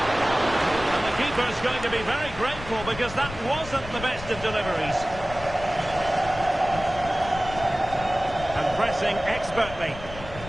the keeper's going to be very grateful because that wasn't the best of deliveries. And pressing expertly.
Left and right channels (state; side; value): noise; left; rumble, 13 dB below the sound